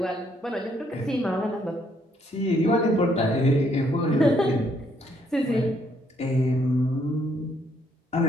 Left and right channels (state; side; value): normal; both; correlation 0.70